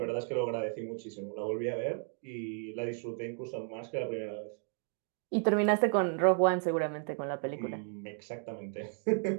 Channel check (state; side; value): silent; left; 55 dB below the other